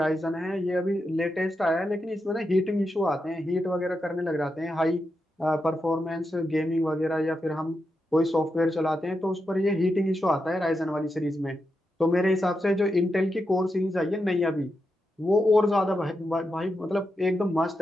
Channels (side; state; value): both; normal; correlation 0.86